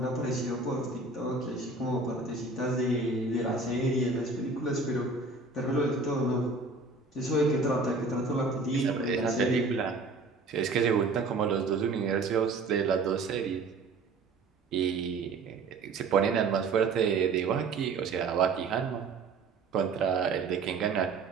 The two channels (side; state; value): left; quieter; 3.8 dB